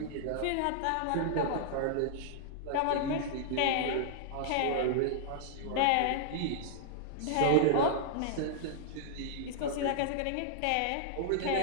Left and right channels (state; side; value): different; both; correlation -0.01